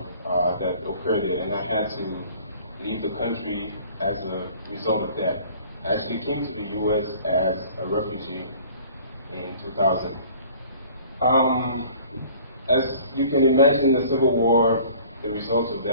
that occurred there, and I had to leave the country as a result of that. I actually came to the U.S. as a refugee in 2000. As you can imagine, the Civil War, the results of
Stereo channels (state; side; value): inverted; both; correlation -0.50